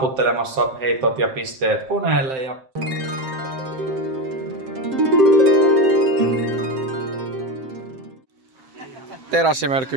heitot ja pisteet koneelle ja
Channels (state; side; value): late; left; 7.7 ms